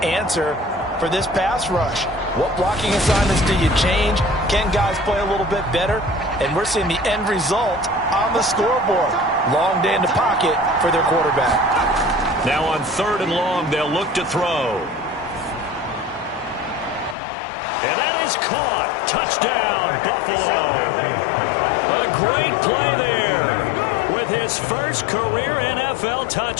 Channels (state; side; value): drops out; right; at 17.2 s